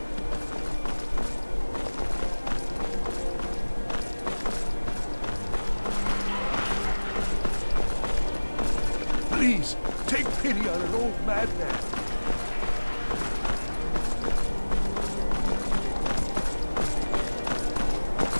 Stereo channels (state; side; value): inverted; both; correlation -1.00